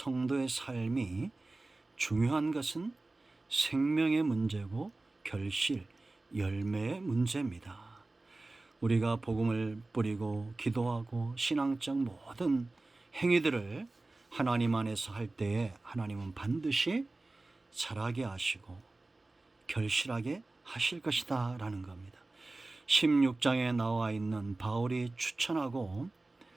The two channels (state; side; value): quieter; left; 3.1 dB